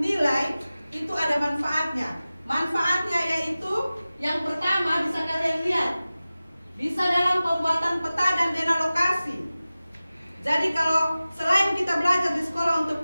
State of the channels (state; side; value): inverted; both; correlation -0.96